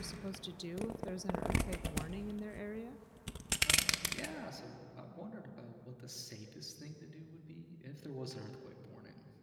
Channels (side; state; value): both; identical; correlation 1.00